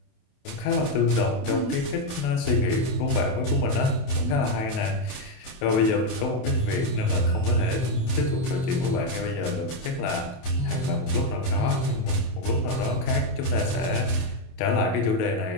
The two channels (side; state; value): right; late; 28 ms